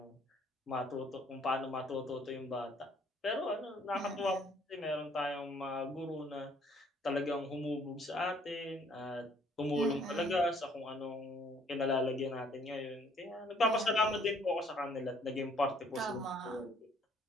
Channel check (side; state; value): both; normal; correlation 0.62